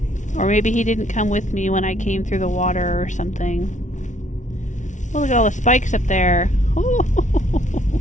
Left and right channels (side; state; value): right; late; 0.36 ms